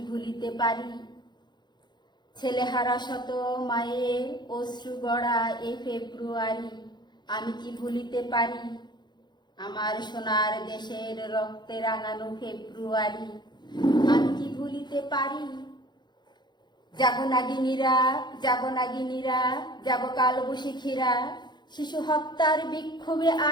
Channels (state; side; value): late; right; 0.21 ms